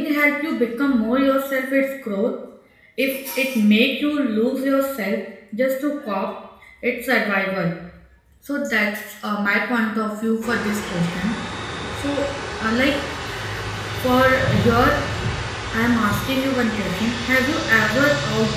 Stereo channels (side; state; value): both; identical; correlation 1.00